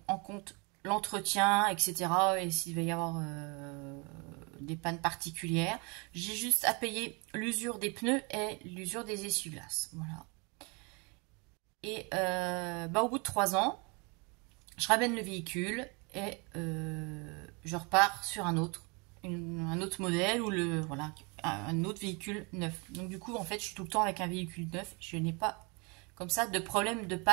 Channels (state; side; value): quieter; left; 30.6 dB